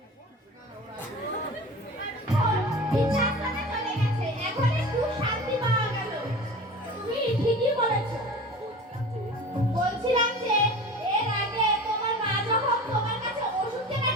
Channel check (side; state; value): both; normal; correlation 0.36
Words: বিছানায় চলে গেছে, এখন একটু শান্তি পাওয়া গেল। তুমি ঠিকই বলেছো। বলছিলাম যে এর আগে তোমার মা যখন তোমার কাছে ওষুধ কেনার